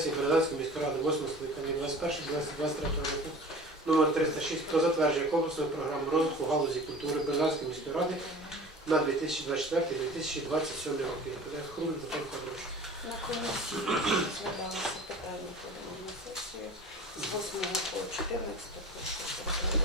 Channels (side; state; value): both; normal; correlation 0.40